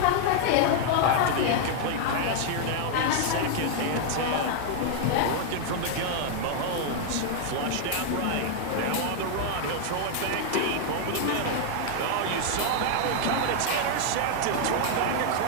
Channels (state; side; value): different; both; correlation 0.00